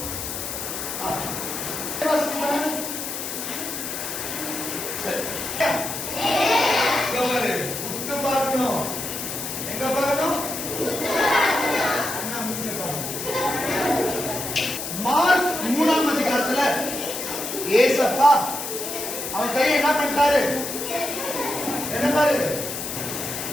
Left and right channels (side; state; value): left; noise; hiss, 5 dB below the sound